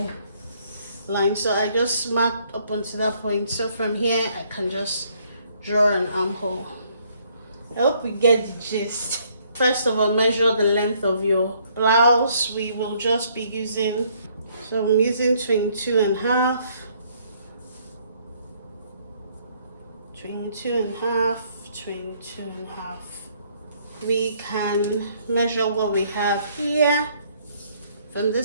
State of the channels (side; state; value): both; inverted; correlation -0.66